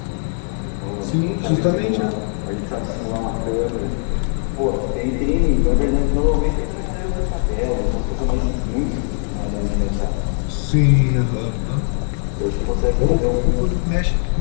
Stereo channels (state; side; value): silent; right; 56 dB below the other